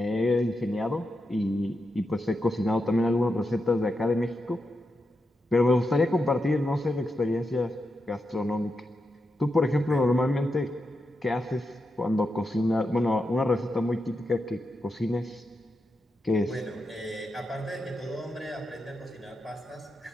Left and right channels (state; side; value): normal; both; correlation 0.87